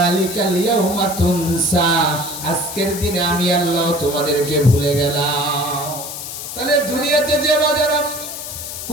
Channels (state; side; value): noise; left; hiss, 8 dB below the sound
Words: ইয়াউমা তুনসা, আজকের দিনে আমি আল্লাহ তোমাদেরকে ভুলে গেলাম। তাহলে দুনিয়াতে যে বাজারা